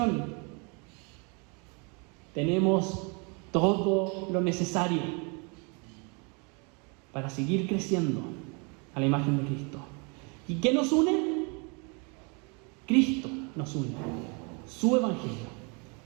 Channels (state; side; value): quieter; left; 33.1 dB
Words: Tenemos todo lo necesario para seguir creciendo a la imagen de Cristo. ¿Y qué nos une? Cristo nos une, su Evangelio.